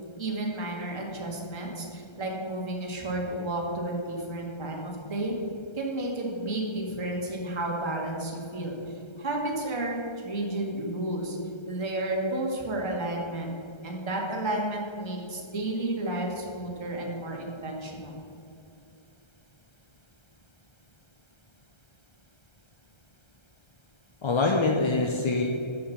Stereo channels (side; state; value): right; late; 1.3 ms